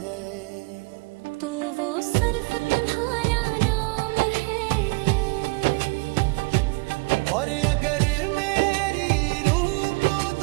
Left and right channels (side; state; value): left; quieter; 27.5 dB